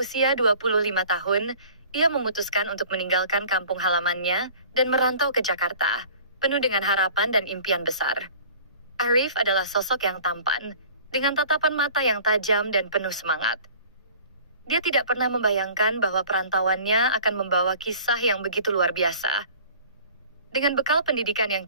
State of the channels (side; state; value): both; inverted; correlation -0.46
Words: 25 tahun, ia memutuskan untuk meninggalkan kampung halamannya dan merantau ke Jakarta, penuh dengan harapan dan impian besar. Arif adalah sosok yang tampan, dengan tatapan mata yang tajam dan penuh semangat. Dia tidak pernah membayangkan bahwa perantauannya akan membawa kisah yang begitu luar biasa. Dengan bekal pendidikan yang